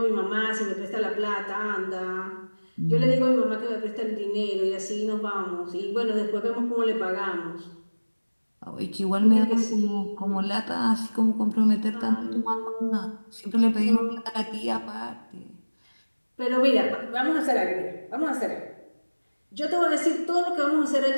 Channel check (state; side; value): inverted; both; correlation -1.00